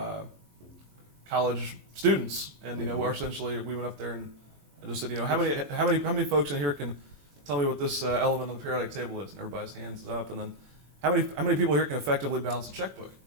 college students, and we're essentially we went up there and just said, how many folks in here can tell me what this element on the periodic table is? And everybody's hands up, and then how many people here can effectively balance a checkbook?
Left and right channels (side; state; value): left; late; 21 ms